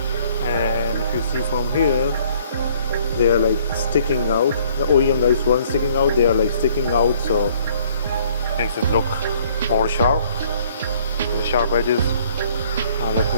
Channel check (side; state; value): both; inverted; correlation -0.60